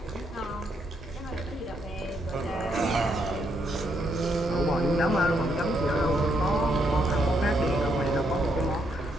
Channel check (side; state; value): both; normal; correlation 0.76